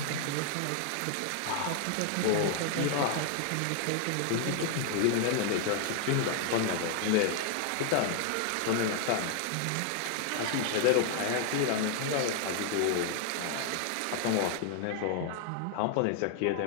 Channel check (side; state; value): both; different; correlation 0.00